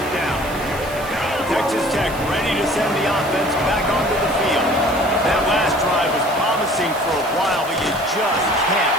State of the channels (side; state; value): right; noise; hiss, 16 dB below the sound